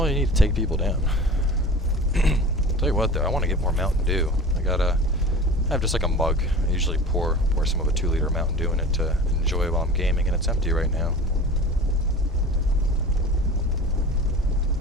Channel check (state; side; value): normal; both; correlation 0.37